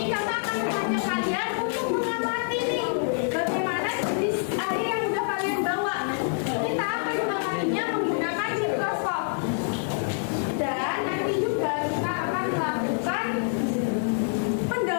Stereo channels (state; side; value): silent; right; 61 dB below the other